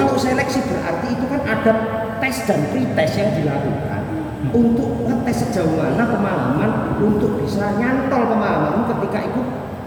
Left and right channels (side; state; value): both; identical; correlation 1.00